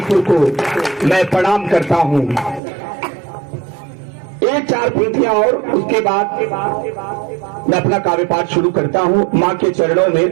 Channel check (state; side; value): drops out; left; at 2.6 s